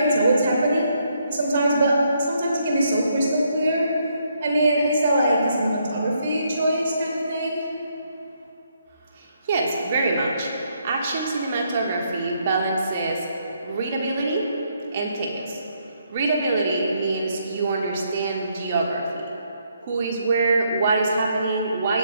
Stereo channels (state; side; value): inverted; both; correlation -0.74